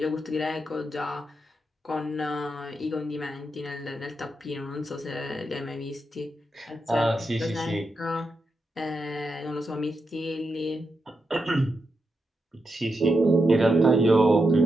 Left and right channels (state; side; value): normal; both; correlation 0.85